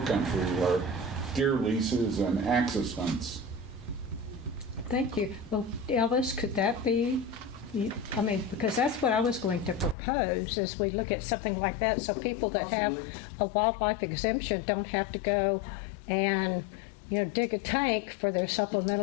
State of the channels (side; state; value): right; drops out; at 10.0 s